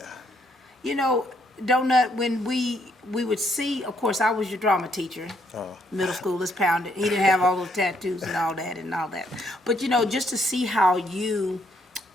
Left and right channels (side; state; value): both; normal; correlation 0.72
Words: You know, Donut, when we would see, of course, I was your drama teacher. Middle school, let's pound it. He didn't have all those tattoos and all that. But, you know, just to see how you